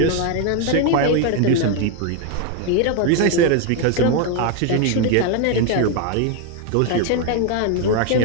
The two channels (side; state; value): both; different; correlation 0.01